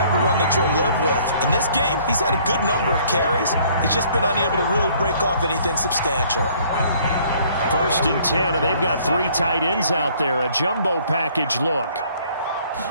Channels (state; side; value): inverted; both; correlation -0.60